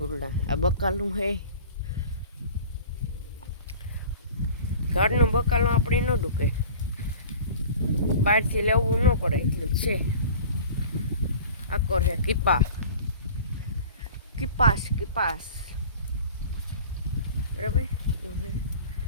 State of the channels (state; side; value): inverted; both; correlation -0.41